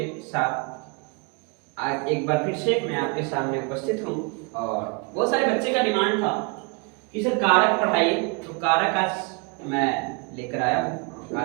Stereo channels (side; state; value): left; quieter; 32.7 dB